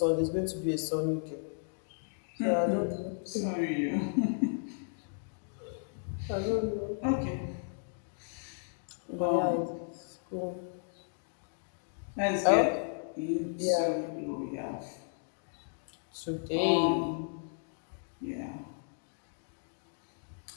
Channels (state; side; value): silent; right; digital silence